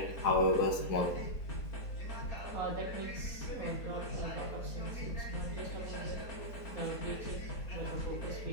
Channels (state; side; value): late; right; 4.2 ms